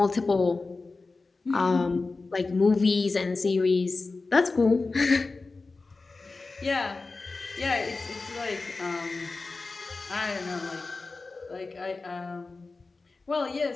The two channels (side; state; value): right; quieter; 3.8 dB